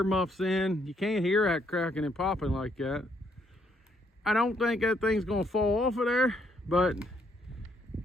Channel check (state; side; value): normal; both; correlation 0.71